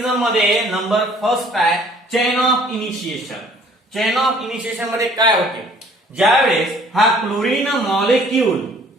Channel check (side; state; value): both; normal; correlation 0.56